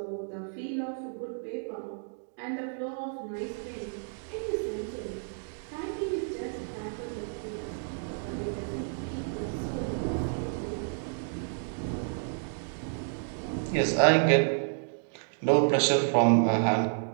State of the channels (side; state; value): left; silent; digital silence